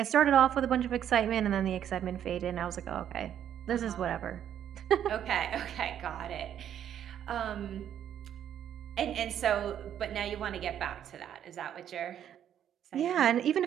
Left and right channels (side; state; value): left; quieter; 9.9 dB